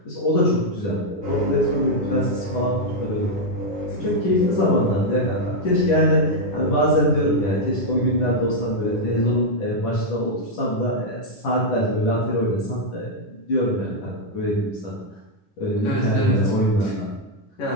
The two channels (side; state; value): right; late; 10 ms